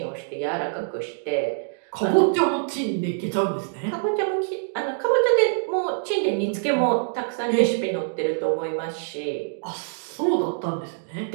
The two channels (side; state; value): left; silent; digital silence